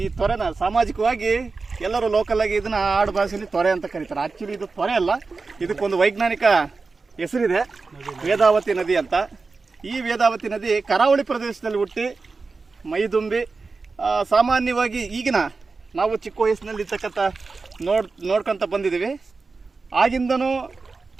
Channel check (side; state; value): left; quieter; 4.2 dB